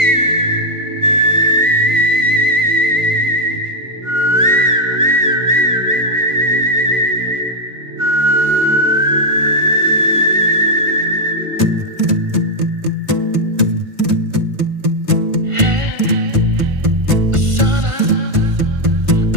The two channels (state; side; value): late; left; 1.4 ms